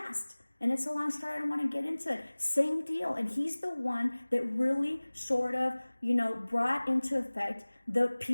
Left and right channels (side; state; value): both; inverted; correlation -1.00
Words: And it's a long story, I don't want to get into it. Same deal. And he's the one that really sort of, brought into effect the